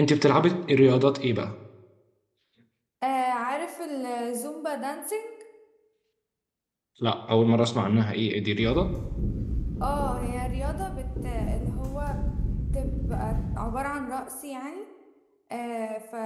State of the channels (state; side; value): identical; both; correlation 1.00